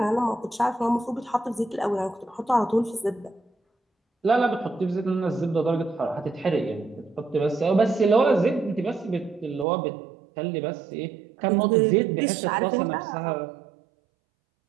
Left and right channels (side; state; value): left; drops out; at 9.7 s